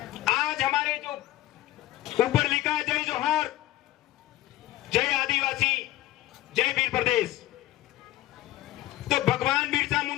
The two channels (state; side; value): quieter; right; 15.7 dB